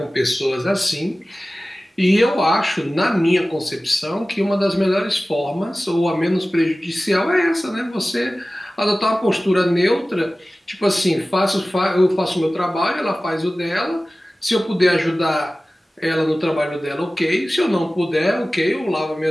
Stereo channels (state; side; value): normal; both; correlation 0.97